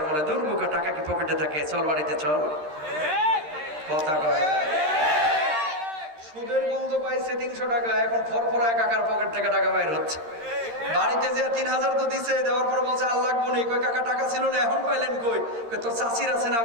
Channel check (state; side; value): late; left; 13 ms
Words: বলে, দূর বোকা, টাকা কি পকেটে থাকে, চল বাড়িতে চল। কথা কয় সুদের গন্ধ পাইছে 300 টাকা, এখন ফরফরা কাকার পকেট থেকে টাকা বাইর হচ্ছে। বাড়িতে যে 3,000 তো দিছে, দেওয়ার পর বলছে আর লাগবো নি। কই কাকা টাকা ছিল না, এখন পাইলেন কই? তোর চাচির আছে না